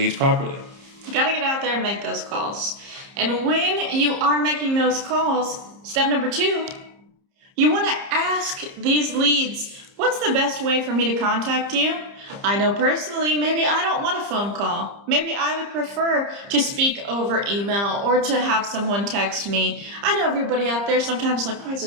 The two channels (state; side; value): late; left; 30 ms